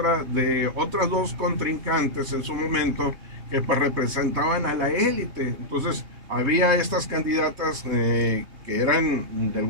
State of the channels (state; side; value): late; left; 3.2 ms